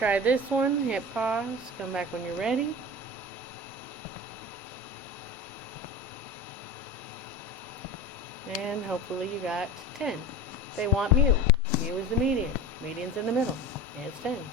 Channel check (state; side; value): normal; both; correlation 0.30